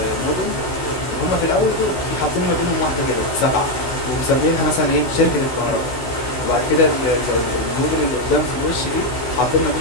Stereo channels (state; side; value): late; right; 15 ms